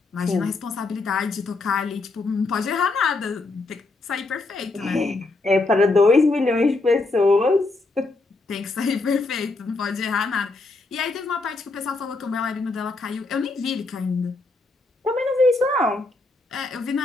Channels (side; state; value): right; quieter; 3.3 dB